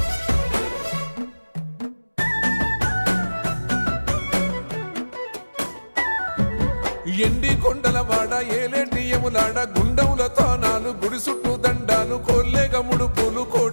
ఎండి కొండల వాడ ఏలేటి యములాడ గుండములతో నాలు గుడి చుట్టూ దండాలు కోల్లేగ ముడుపులు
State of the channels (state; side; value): inverted; both; correlation -1.00